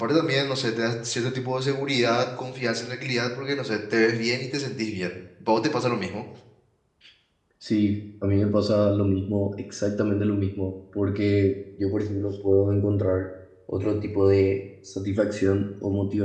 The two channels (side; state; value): both; identical; correlation 1.00